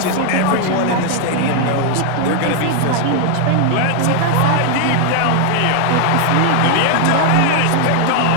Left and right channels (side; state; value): both; different; correlation 0.00